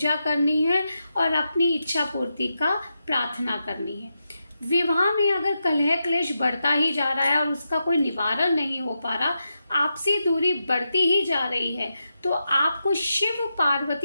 करनी है और अपनी इच्छा पूर्ति का प्रार्थना करनी है। विवाह में अगर कलह क्लेश बढ़ता ही जा रहा है और उसका कोई निवारण नहीं हो पा रहा, आपसी दूरी बढ़ती ही जा रही है, तो आपको शिव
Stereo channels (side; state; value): both; inverted; correlation -0.87